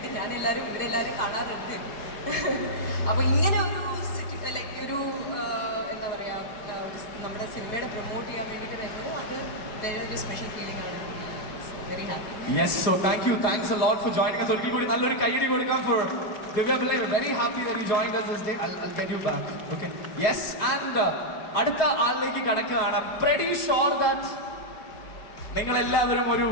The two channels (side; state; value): right; late; 4.6 ms